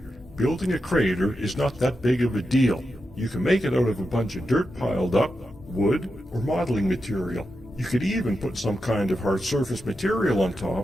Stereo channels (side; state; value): both; normal; correlation 0.88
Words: Building a crater is not that big of a deal. You can make it out of a bunch of dirt piled up, wood, or modeling material. You could even put some kind of hard surface material on